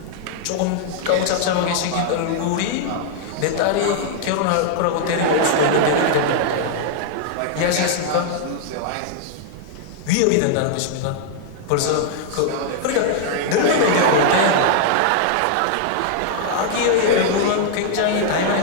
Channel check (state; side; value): different; both; correlation -0.01